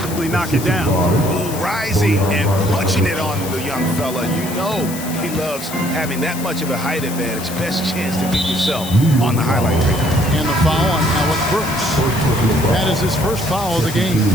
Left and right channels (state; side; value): noise; left; hiss, 11 dB below the sound